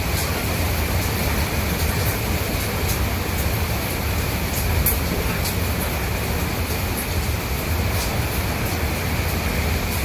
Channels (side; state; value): both; identical; correlation 1.00